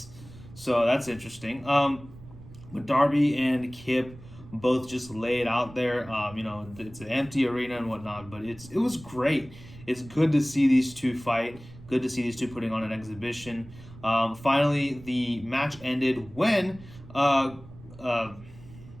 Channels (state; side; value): noise; right; rumble, 19 dB below the sound